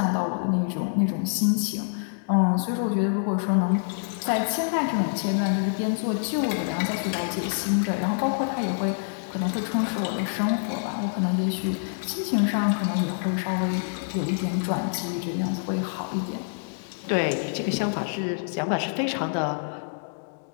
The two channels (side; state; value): right; silent; digital silence